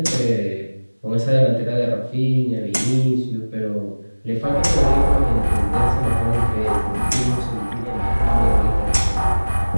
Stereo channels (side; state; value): both; inverted; correlation -1.00